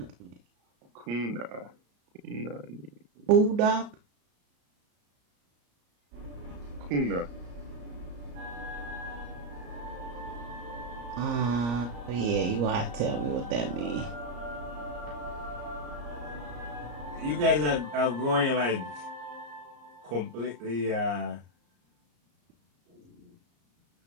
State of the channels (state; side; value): late; left; 34 ms